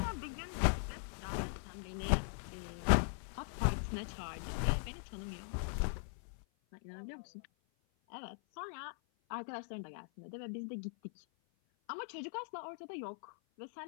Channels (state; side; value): silent; right; 51 dB below the other